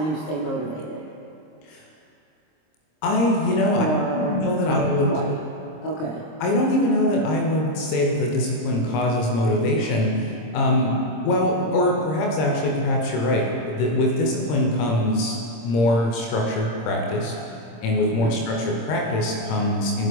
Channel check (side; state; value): right; late; 26 ms